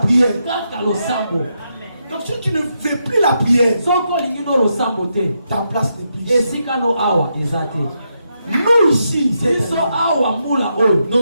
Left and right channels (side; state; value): both; inverted; correlation -0.82